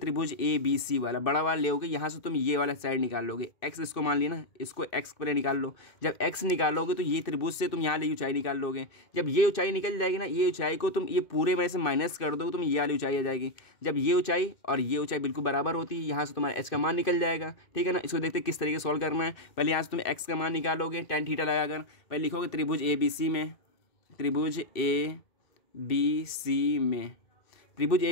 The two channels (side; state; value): right; late; 2.1 ms